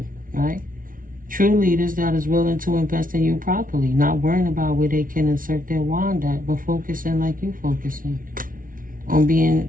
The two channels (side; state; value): left; late; 0.40 ms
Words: right? True leaders that is willing to invest in you properly, not worrying about where they can insert their wand at, but focusing like you focusing on